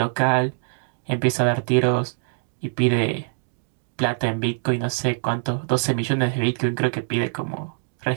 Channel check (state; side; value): silent; left; digital silence